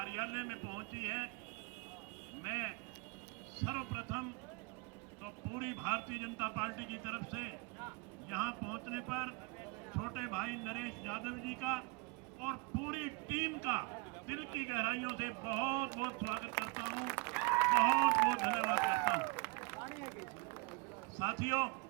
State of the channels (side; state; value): left; quieter; 29.4 dB